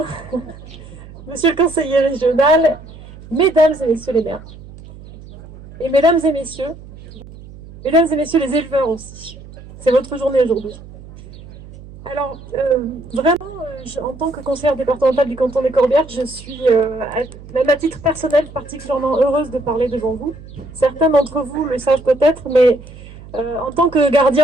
monsieur le conseiller régional, mesdames et messieurs les maires, et mesdames et messieurs les éleveurs aussi. C'est votre journée aujourd'hui. Alors, en tant que conseillère départementale du canton des Corbières, je suis, même à titre personnel, particulièrement heureuse de parler devant vous. Certains d'entre vous le savent peut-être, mais en tant que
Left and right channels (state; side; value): noise; right; hum, 17 dB below the sound